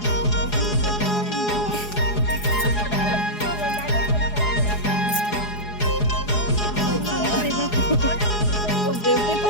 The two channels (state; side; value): late; right; 4.8 ms